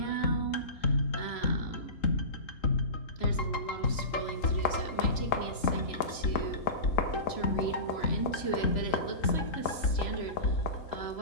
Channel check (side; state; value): right; late; 3.0 ms